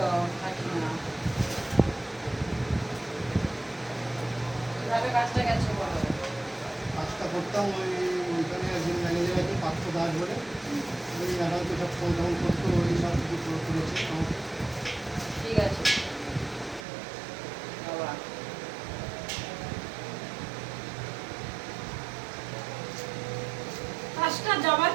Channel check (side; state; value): left; drops out; at 16.8 s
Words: থাকি না কিভাবে কাজটা গেছে বলো। কাজটা করতাম ওইখানে একজন ম্যানেজার আছে পাঁচশো দাস বলে, ওই ম্যাডাম তো সব ফোন টোন করতো, ওই সব কিছু করেছে। ঠিক আছে বাবা। কাজটা যাবার